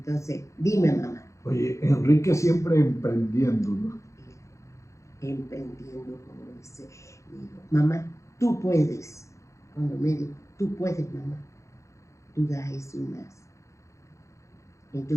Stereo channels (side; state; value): right; late; 0.15 ms